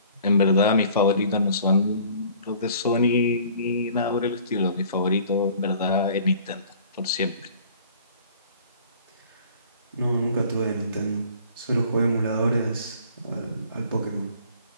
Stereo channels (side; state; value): both; inverted; correlation -0.52